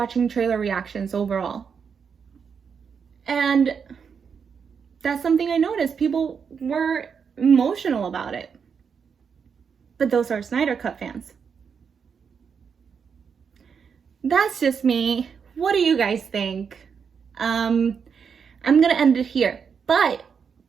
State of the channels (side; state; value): left; quieter; 6.4 dB